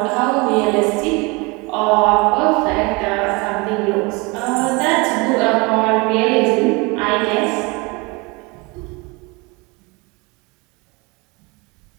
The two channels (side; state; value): left; quieter; 26.9 dB